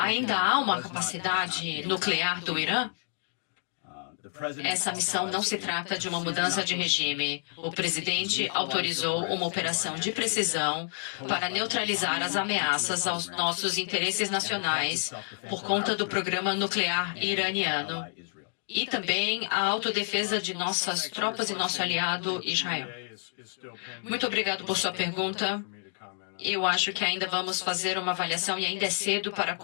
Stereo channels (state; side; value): silent; right; digital silence